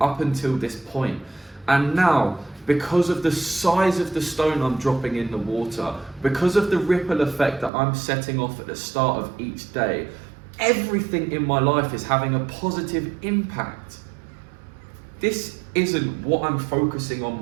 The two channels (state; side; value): drops out; left; at 7.7 s